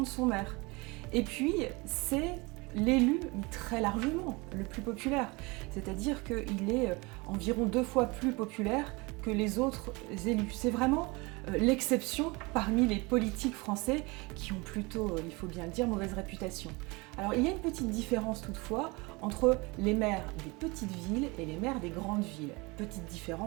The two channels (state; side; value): quieter; left; 25.8 dB